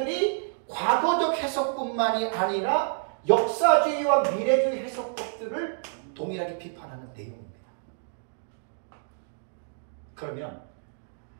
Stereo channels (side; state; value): left; silent; digital silence